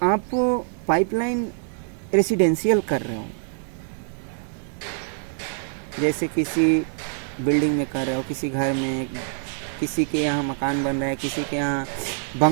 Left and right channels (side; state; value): left; silent; 62 dB below the other